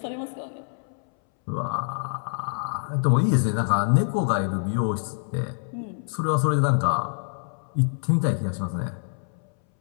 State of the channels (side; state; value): right; silent; 61 dB below the other